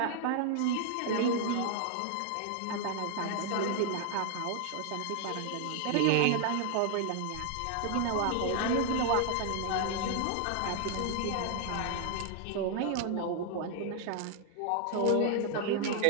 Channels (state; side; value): different; both; correlation 0.00